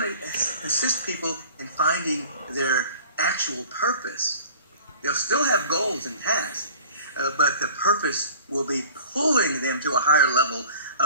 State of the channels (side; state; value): both; inverted; correlation -0.45